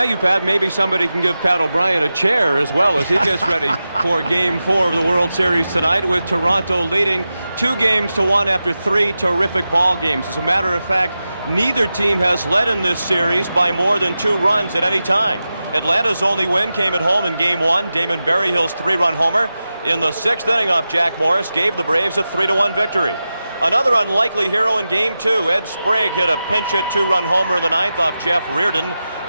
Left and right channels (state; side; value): inverted; both; correlation -0.92